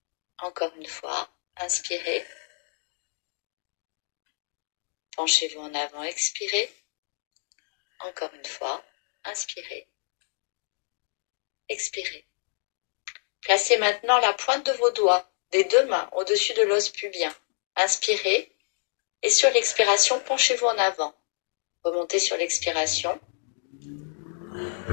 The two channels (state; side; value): silent; right; digital silence